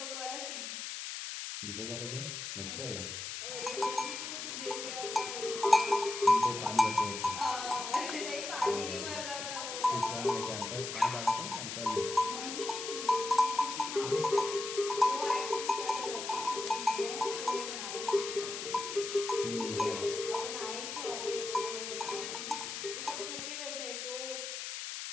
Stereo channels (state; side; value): noise; left; hiss, 6 dB below the sound